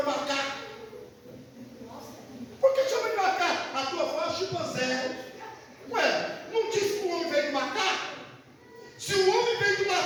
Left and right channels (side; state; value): both; identical; correlation 1.00